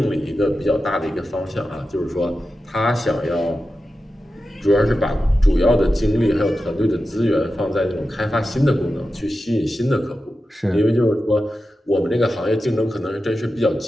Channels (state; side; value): normal; both; correlation 0.92